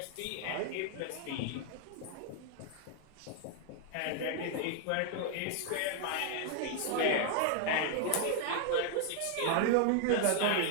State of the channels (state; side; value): different; both; correlation 0.00